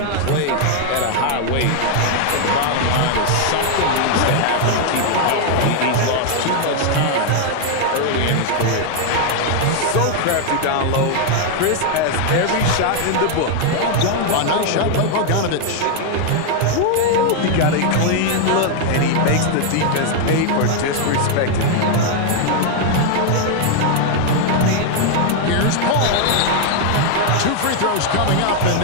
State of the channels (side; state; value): both; different; correlation 0.00